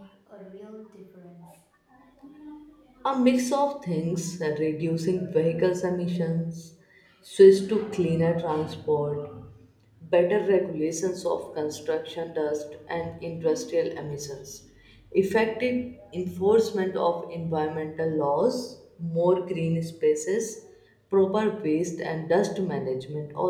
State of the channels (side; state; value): both; identical; correlation 1.00